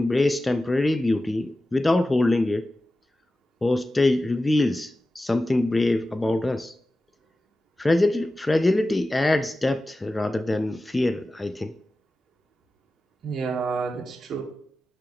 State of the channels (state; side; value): normal; both; correlation 0.94